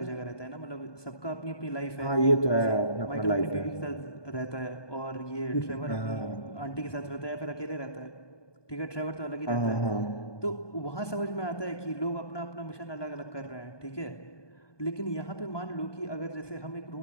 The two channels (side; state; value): right; late; 1.2 ms